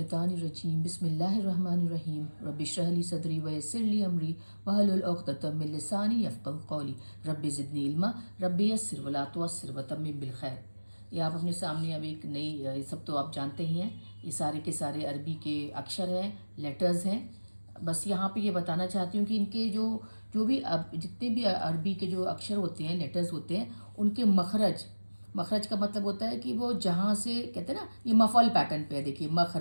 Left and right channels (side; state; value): both; inverted; correlation -1.00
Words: बिस्मिल्लाहिर्रहमानिर्रहीम रब्बिश्रह ली सदरी वयस्सिर ली अमरी वहलुल उक़दतम मिन लिसानी यफ़क़हू क़ौली रब्बि ज़िदनी इल्मा रब्बि यस्सिर वला तुअस्सिर वतम्मिम बिल खैर। ये आप अपने सामने अब एक नई, ये सब तो आप जानते ही हैं, ये सारे के सारे अरबी के अक्षर हैं, लेटर्स हैं। बस यहाँ पे ये बताना चाहती हूँ कि इनके जो जो भी अब जितने भी अरबी के जो अक्षर होते हैं, लेटर्स होते हैं, उनके मखरज, मखरज का मतलब होता है कि वो जहाँ से कहते हैं ना, ये मफल पैटर्न पे है। देखिए